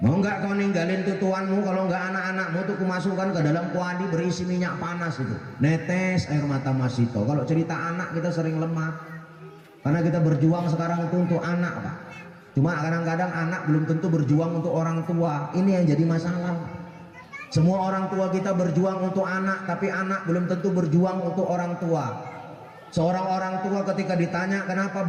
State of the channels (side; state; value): both; identical; correlation 1.00